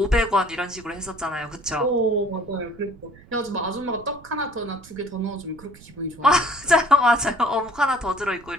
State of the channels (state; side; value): noise; right; rumble, 22 dB below the sound